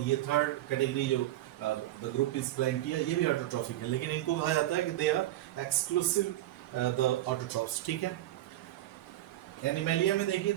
ये थर्ड कैटेगरी जो द ग्रुप इज प्लांटिया ये भी ऑटोट्रॉफिक है, लेकिन इनको कहा जाता है कि they are exclusive the autotrophs, ठीक है। एनिमेलिया में देखिए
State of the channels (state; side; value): quieter; left; 14.8 dB